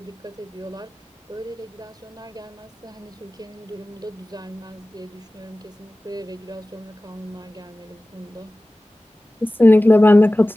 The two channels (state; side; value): normal; both; correlation 0.97